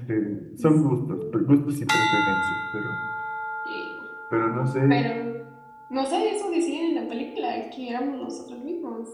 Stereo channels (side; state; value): both; identical; correlation 1.00